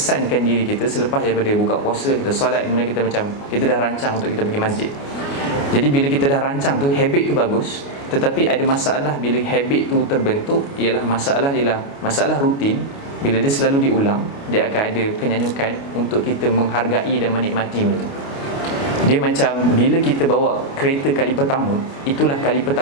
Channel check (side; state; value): right; late; 29 ms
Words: diri kita selepas daripada buka puasa, kita solat, kemudian kita dah rancang untuk kita pergi masjid. Jadi bila kita dah rancang tu, habit tu bagus, Tetapi ada masalah bila habit tu terbentuk, ialah masalah rutin. Bila dia selalu diulang, dia akan ada kenyanyukan untuk kita menghargai dan menikmati benda tu. Dia macam bila kita bawa kereta kali pertama, itulah kali